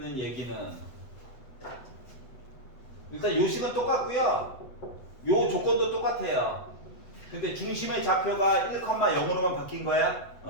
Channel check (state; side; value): late; right; 7.9 ms